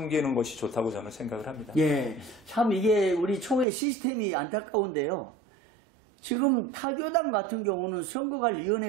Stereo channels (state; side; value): drops out; left; at 3.7 s